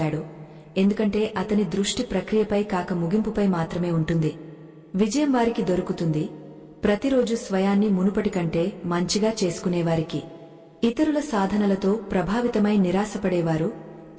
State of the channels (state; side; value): identical; both; correlation 1.00